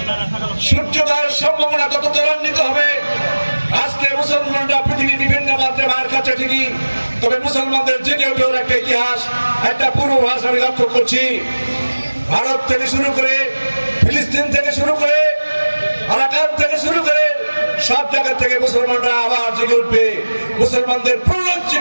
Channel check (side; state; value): both; inverted; correlation -1.00